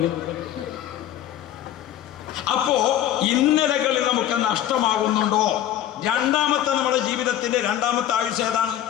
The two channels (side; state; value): right; quieter; 11.6 dB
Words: അപ്പോ ഇന്നലകളിൽ നമുക്ക് നഷ്ടമാകുന്നുണ്ടോ? രണ്ടാമത്തെ നമ്മുടെ ജീവിതത്തിന്റെ രണ്ടാമത്തെ ആയുസ് ഏതാണ്?